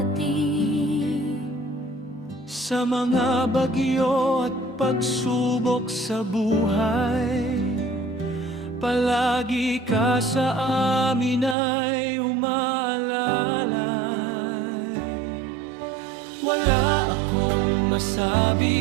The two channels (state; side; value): drops out; left; at 11.6 s